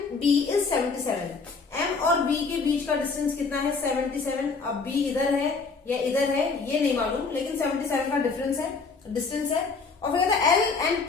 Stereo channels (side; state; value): right; quieter; 4.6 dB